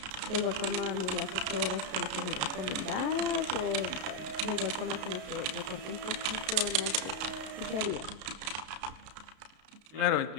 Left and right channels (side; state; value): left; late; 32 ms